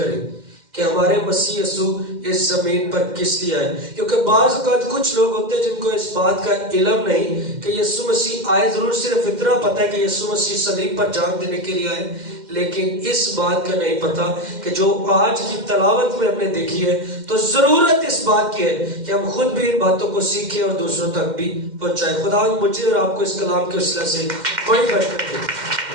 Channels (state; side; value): late; left; 2.1 ms